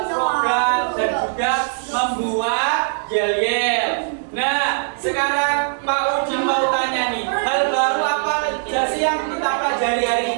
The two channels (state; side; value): silent; left; digital silence